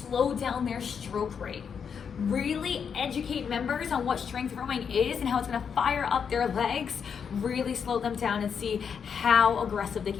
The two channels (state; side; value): quieter; right; 6.9 dB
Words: down their stroke rate. Really educate members on what strength rowing is and how it's going to fire up their legs, really slow them down and see how aggressive they